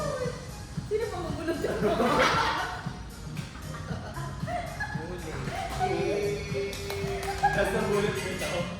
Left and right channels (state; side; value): identical; both; correlation 1.00